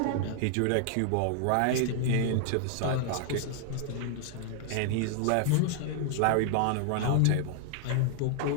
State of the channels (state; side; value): different; both; correlation 0.00